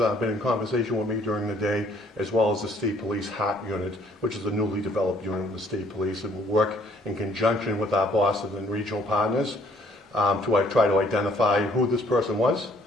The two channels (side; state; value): both; normal; correlation 0.62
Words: been in conversation with me during the day, as well as the state police HART unit, which is a newly developed unit of the state police, and will work in conjunction with our bosses and regional partners to try to identify who this person was.